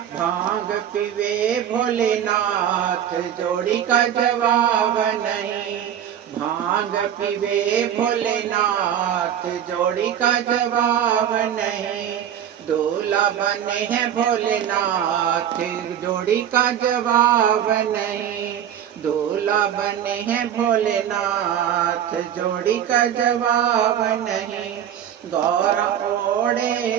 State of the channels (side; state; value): left; quieter; 9.9 dB